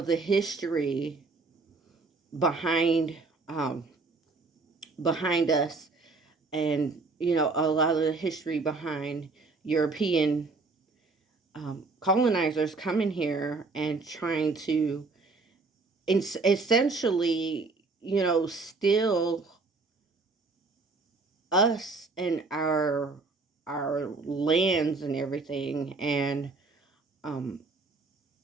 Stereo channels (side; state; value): left; quieter; 3.9 dB